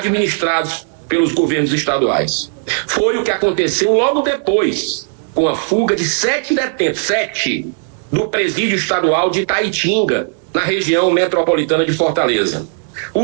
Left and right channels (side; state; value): left; silent; digital silence